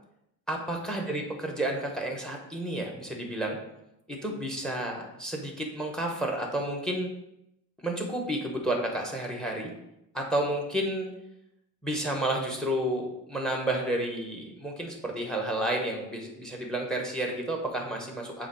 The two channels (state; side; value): normal; both; correlation 0.46